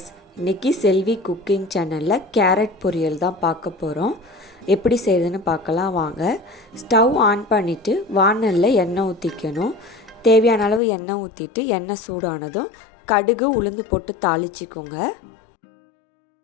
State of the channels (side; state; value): right; drops out; at 10.8 s